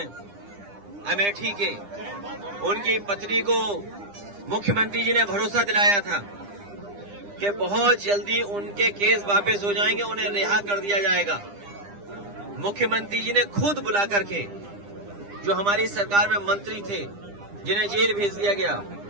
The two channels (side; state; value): left; late; 9.9 ms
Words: अमेठी के, उनकी पत्नी को मुख्यमंत्री जी ने भरोसा दिलाया था कि बहुत जल्दी उनके केस वापस हो जाएंगे, उन्हें रिहा कर दिया जाएगा। मुख्यमंत्री जी ने खुद बुला करके, जो हमारी सरकार में मंत्री थे जिन्हें जेल भेज दिया गया,